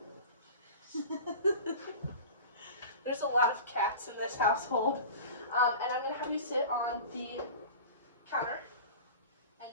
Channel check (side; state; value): both; inverted; correlation -0.36